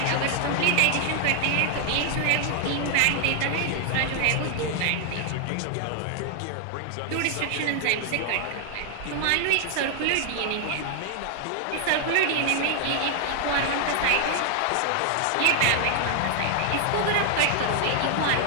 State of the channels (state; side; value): different; both; correlation 0.00